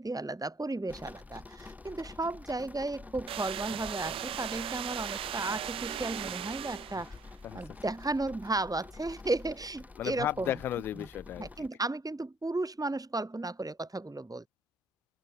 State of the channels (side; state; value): both; normal; correlation 0.62